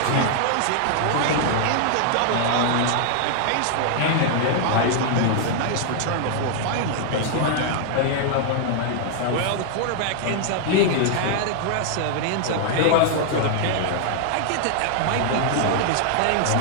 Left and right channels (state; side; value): different; both; correlation 0.00